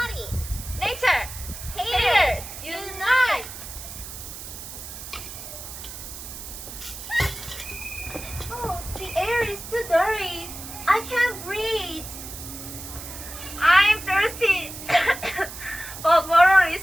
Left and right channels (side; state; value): right; noise; hiss, 11 dB below the sound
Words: Nature. Haters, unite. Oh, the air is too dirty. I can't breathe. I'm thirsty. But water is